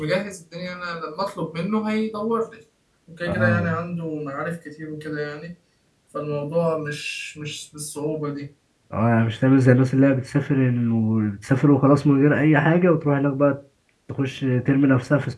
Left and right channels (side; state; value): both; identical; correlation 1.00